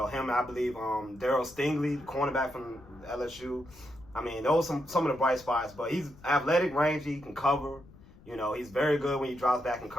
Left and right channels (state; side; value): noise; left; rumble, 23 dB below the sound